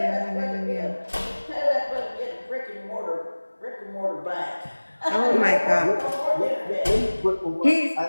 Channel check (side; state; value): both; inverted; correlation -1.00